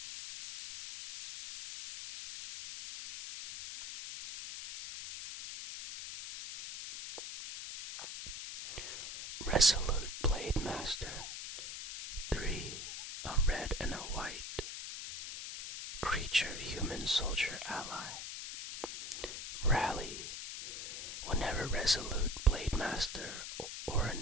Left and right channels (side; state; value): left; noise; hiss, 7 dB below the sound